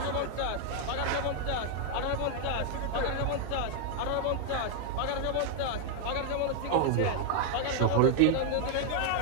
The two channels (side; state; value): both; different; correlation 0.00